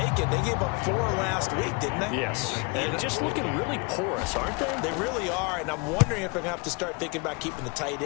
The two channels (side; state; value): right; quieter; 29.9 dB